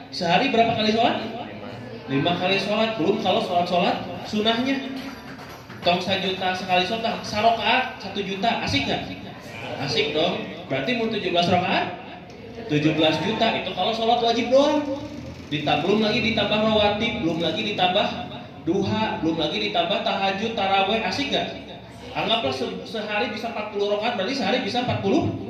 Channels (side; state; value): both; identical; correlation 1.00